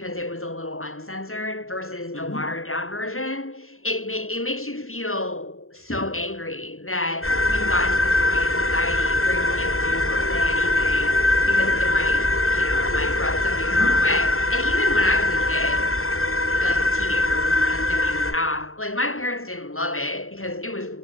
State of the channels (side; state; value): right; late; 0.62 ms